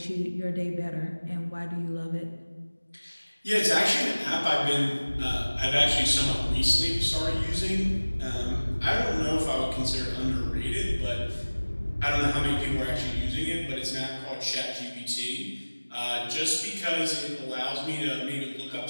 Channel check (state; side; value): inverted; both; correlation -1.00